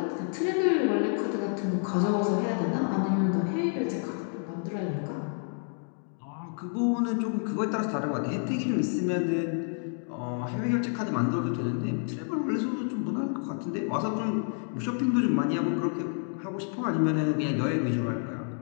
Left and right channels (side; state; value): right; silent; 55 dB below the other